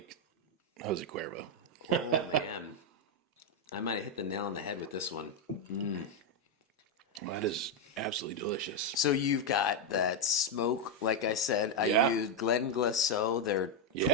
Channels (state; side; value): normal; both; correlation 0.03